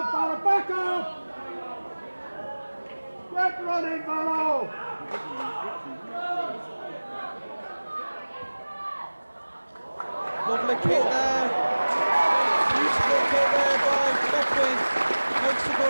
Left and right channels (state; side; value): inverted; both; correlation -1.00